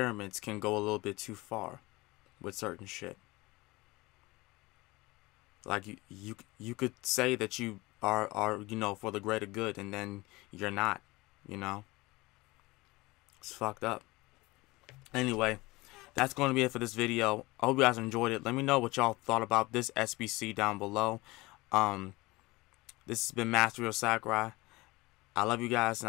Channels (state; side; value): quieter; right; 21.9 dB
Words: can go a little bit too far with certain shit. Like you could say that you are you know, for the greater good, and then you're not, you know. It's fucked up. Anyway, that's going to be it for this video. I hope you guys enjoyed it. Let me know what y'all thought about this SBC down below. This has been Master of Sakurai. I love you guys, and